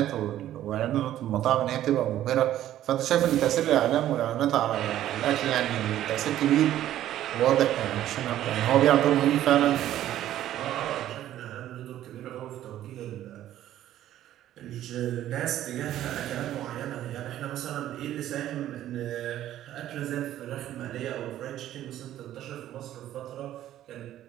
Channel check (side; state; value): left; quieter; 12.6 dB